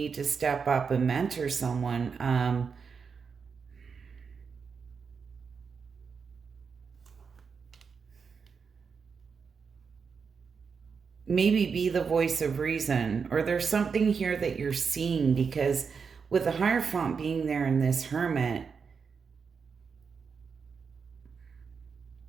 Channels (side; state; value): left; quieter; 5.8 dB